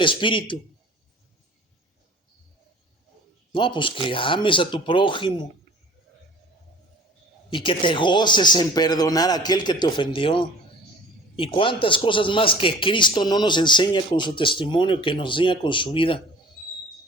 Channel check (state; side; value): normal; both; correlation 0.45